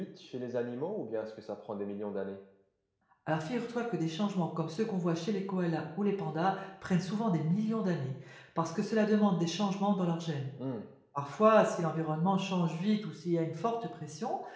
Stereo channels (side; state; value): both; identical; correlation 1.00